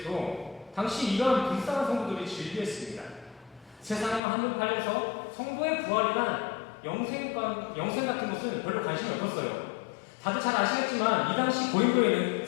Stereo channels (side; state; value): right; drops out; at 4.2 s